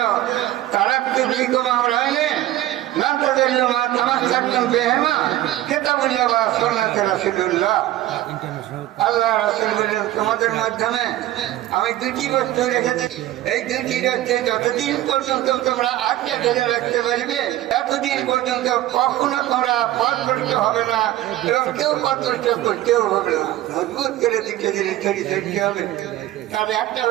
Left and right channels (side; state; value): left; quieter; 14.6 dB